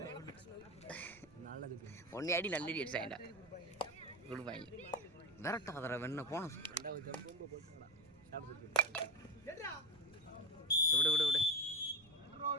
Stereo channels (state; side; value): noise; right; rumble, 25 dB below the sound